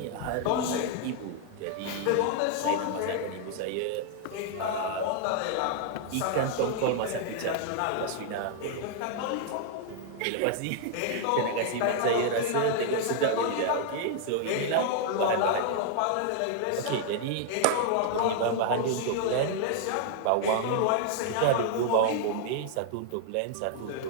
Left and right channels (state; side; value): different; both; correlation 0.00